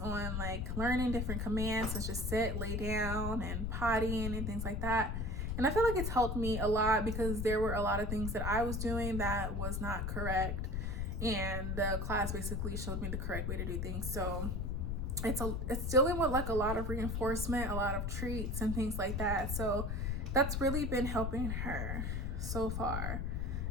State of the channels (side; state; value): left; noise; rumble, 1 dB below the sound